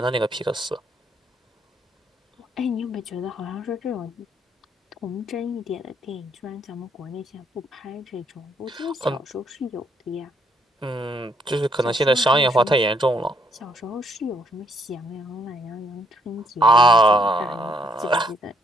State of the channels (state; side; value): normal; both; correlation 0.70